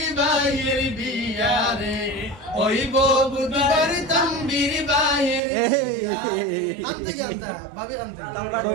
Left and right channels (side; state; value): left; drops out; at 5.4 s